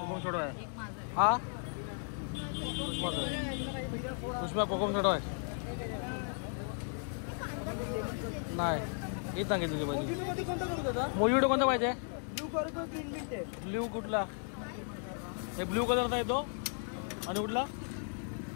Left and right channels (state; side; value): silent; right; 54 dB below the other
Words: सोडा आहे. हा उष्मा कोकम सोडा आहे. नाही हे सांगितलं पाहिजे. मोजिटो कोणता पाहिजे? ब्ल्यू कुठला? एक ब्ल्यू कलरचा येतो आणि कुठला